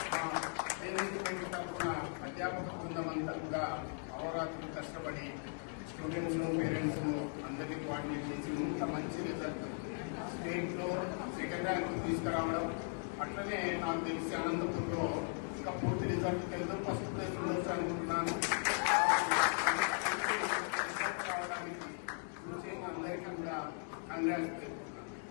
management తరఫున అధ్యాపక బృందం అంతా కూడా అవరాత్రులు కష్టపడి స్టూడెంట్స్ పేరెంట్స్ అందరినీ కోఆర్డినేట్ చేసి ఇంత మంచి రిజల్ట్ స్టేట్లో సెకండ్ ర్యాంక్ తీసుకురావడం. అట్లనే నాకు తెలిసి అనంతపూర్లో ఇంకా పూర్తి రిజల్ట్ తెలుసు, ఫస్ట్ ప్లేస్ ఉండొచ్చు అనుకుంటున్నాను. రావడానికి కృషి చేసిన అందరికీ కూడా congrats.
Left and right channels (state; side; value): silent; right; 52 dB below the other